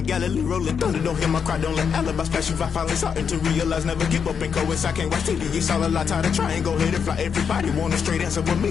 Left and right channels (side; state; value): right; quieter; 6.8 dB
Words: Galilee rolling thunder. Don't hear my cry, don't let alibis flash. If I finally starting to realize, never give up and coast. I can't watch TV, it's all a lot. Time to try and go ahead and fly. Everybody want a straight answer, but